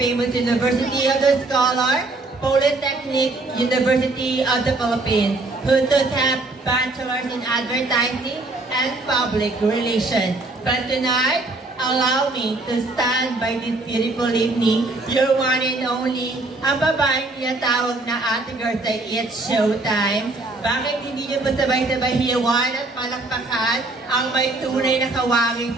University of the Scholar, Polytechnic University of the Philippines, who does have bachelors in advertising and public relations. But tonight, allow me to stand by this beautiful evening, your one and only, ang babaeng tinatawag na Ate Girl sa It's Showtime. Bakit hindi niyo ba sabay-sabay hiyawan at palakpakan ang may tunay na kawangin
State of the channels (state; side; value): quieter; left; 3.1 dB